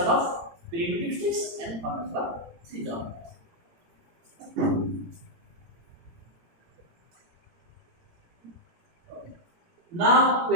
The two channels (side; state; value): left; late; 18 ms